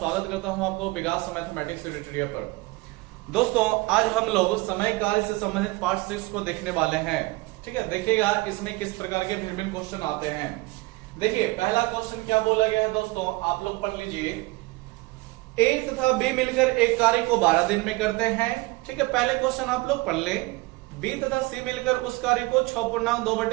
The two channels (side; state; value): left; quieter; 22.6 dB